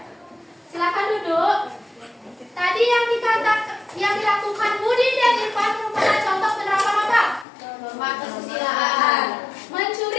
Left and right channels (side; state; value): right; drops out; at 7.5 s